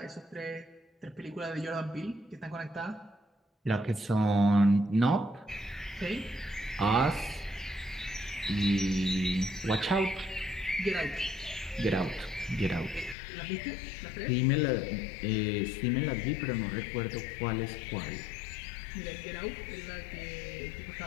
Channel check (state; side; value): drops out; right; at 13.2 s